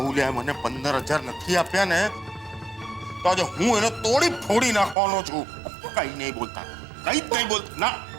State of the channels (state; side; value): drops out; left; at 5.0 s